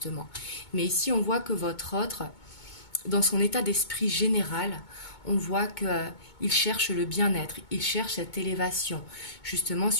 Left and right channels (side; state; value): right; late; 2.2 ms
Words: Mais ici, on voit que votre autre, dans son état d'esprit général, on voit qu'il cherche le bien-être, il cherche cette élévation, justement,